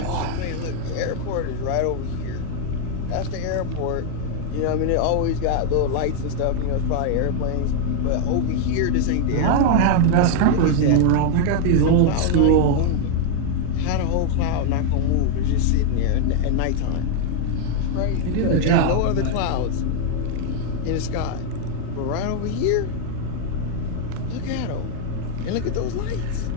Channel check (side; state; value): both; different; correlation 0.00